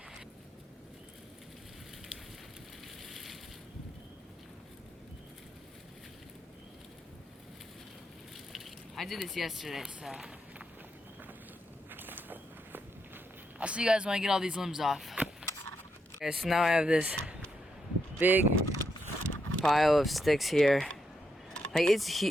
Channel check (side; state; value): both; normal; correlation 0.81